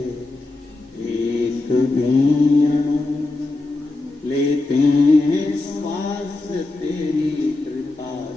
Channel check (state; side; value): quieter; right; 3.0 dB